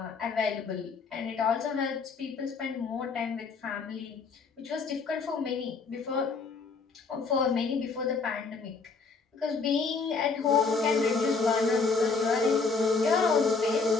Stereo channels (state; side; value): quieter; right; 4.6 dB